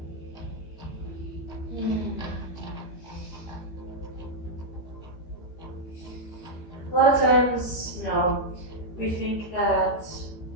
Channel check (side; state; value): right; late; 13 ms